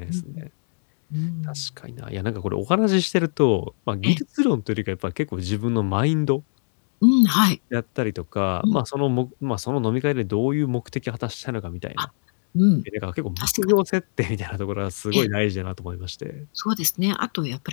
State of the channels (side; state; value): right; silent; digital silence